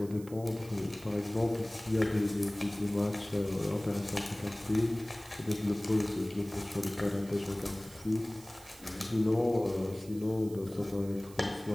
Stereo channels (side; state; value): right; noise; hiss, 20 dB below the sound